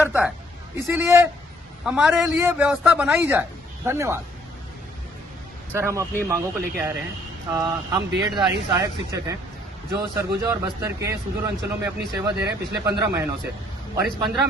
है, इसीलिए हमारे लिए व्यवस्था बनाई जाए। धन्यवाद सर। हम अपनी मांगों को लेकर आ रहे हैं। हम बीएड धारी सहायक शिक्षक हैं जो सरगुजा और बस्तर के सुदूर अंचलों में अपनी सेवा दे रहे हैं पिछले 15 महीनों से। और इस 15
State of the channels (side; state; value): both; normal; correlation 0.64